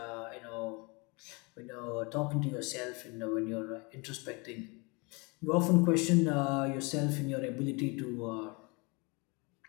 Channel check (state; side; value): quieter; right; 29.0 dB